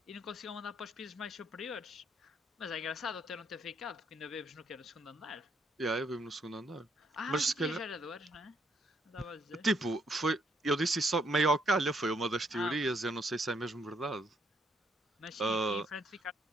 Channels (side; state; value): both; normal; correlation 0.71